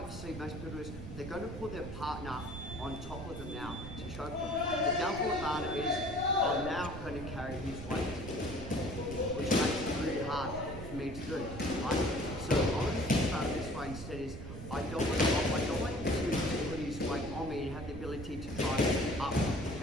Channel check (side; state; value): right; noise; rumble, 9 dB below the sound